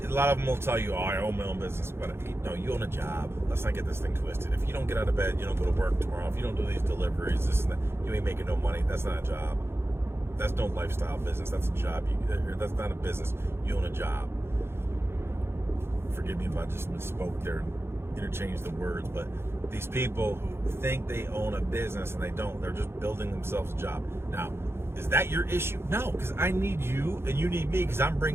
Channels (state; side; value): late; left; 0.12 ms